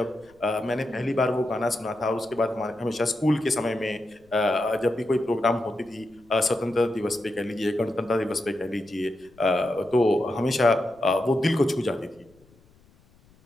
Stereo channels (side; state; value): left; noise; rumble, 30 dB below the sound